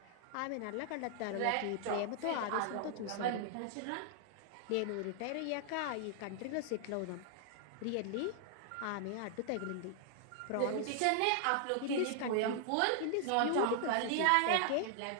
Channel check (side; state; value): both; different; correlation 0.00